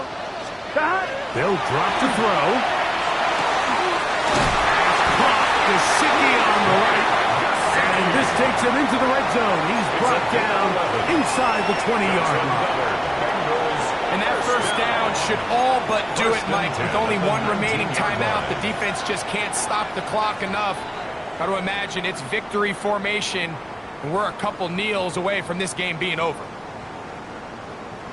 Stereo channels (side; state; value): both; identical; correlation 1.00